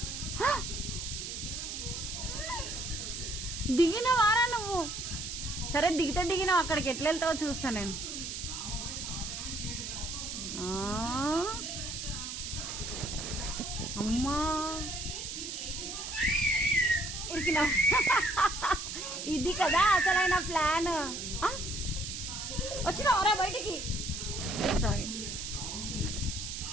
దిగినవారా నువ్వు? సరే దిగితే దిగినావు, అక్కడికి ఎట్లా వెళ్తావో చూస్తా నేను. అమ్మా ఇరికినా. ఇది కదా అసలైన ప్లాన్. వచ్చినావరా బయటికి? సారీ.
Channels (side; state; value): right; noise; hiss, 6 dB below the sound